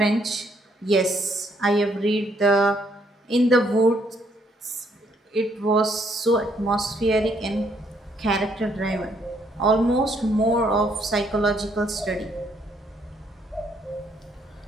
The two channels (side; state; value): both; normal; correlation 0.70